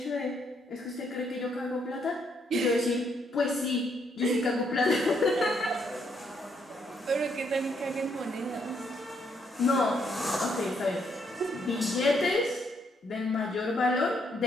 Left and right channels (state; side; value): normal; both; correlation 0.73